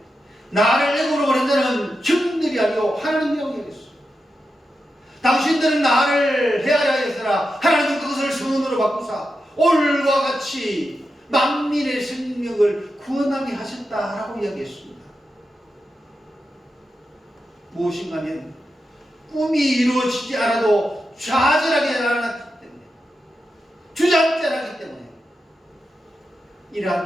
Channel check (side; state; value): both; normal; correlation 0.89